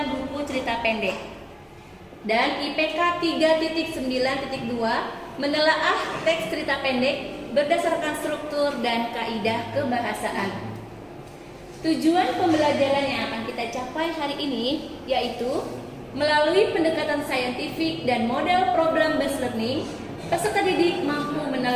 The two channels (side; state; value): both; identical; correlation 1.00